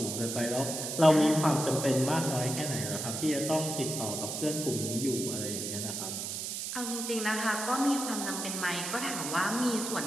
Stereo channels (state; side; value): noise; right; hiss, 4 dB below the sound